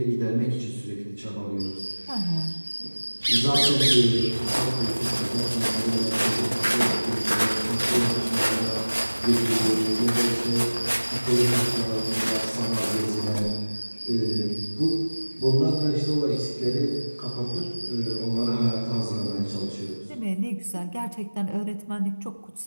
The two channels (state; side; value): inverted; both; correlation -1.00